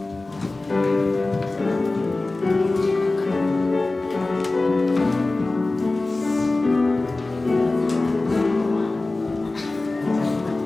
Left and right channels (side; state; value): right; quieter; 3.1 dB